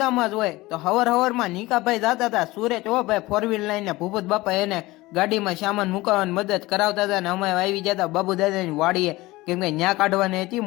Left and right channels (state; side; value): quieter; right; 19.8 dB